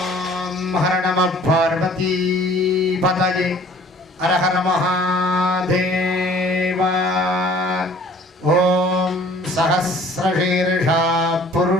ஹர நம பார்வதி பதயே ஹர ஹர மகாதேவா. ஓம் சஹஸ்ரசீர்ஷா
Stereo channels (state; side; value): normal; both; correlation 0.53